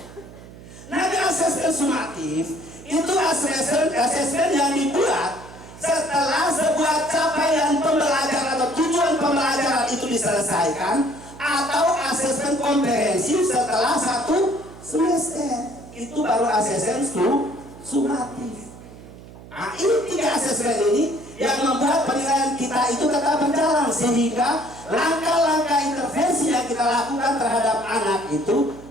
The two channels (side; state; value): right; noise; hum, 18 dB below the sound